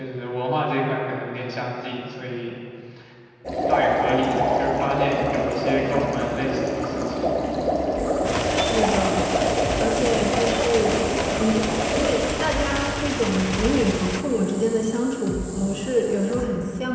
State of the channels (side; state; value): both; identical; correlation 1.00